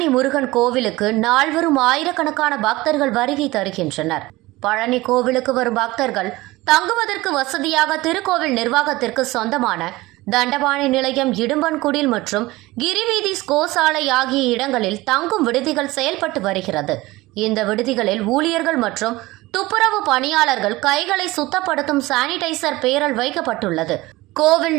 முருகன் கோவிலுக்கு நாள்வரும் ஆயிரக்கணக்கான பக்தர்கள் வருகை தருகின்றனர். பழனி கோவிலுக்கு வரும் பக்தர்கள் தங்குவதற்கு வசதியாக திருக்கோவில் நிர்வாகத்திற்கு சொந்தமான தண்டபாணி நிலையம், இடும்பன்குடில் மற்றும் கிரிவீதி கோசாலை ஆகிய இடங்களில் தங்கும் விடுதிகள் செயல்பட்டு வருகிறது. இந்த விடுதிகளில் ஊழியர்கள் மற்றும் துப்புரவு பணியாளர்கள் கைகளை சுத்தப்படுத்தும் சானிடைசர் பேரல் வைக்கப்பட்டுள்ளது. கோவில்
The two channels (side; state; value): left; quieter; 19.7 dB